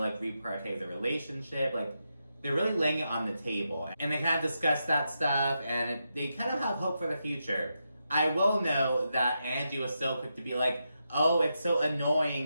reprioritize the relationship. Like they're really laying it on the table, and they kind of discuss that stuff, and they kind of have hope for the future. I will know that Angie was so quick to be like, oh, it's so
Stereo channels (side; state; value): both; inverted; correlation -0.85